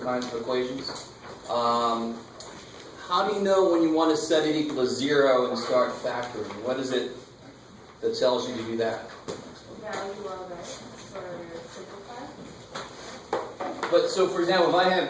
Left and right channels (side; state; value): both; identical; correlation 1.00